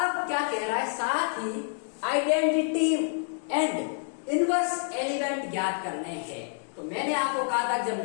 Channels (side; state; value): right; silent; 59 dB below the other